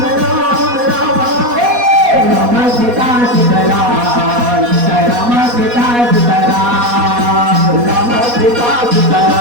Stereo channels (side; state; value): left; late; 4.2 ms